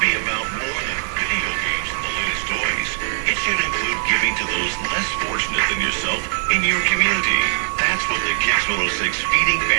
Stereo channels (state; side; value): silent; left; 65 dB below the other